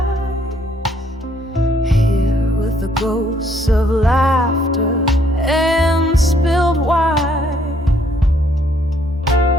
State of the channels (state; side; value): normal; both; correlation 0.67